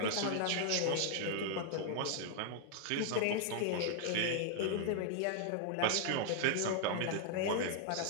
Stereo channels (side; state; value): both; different; correlation 0.00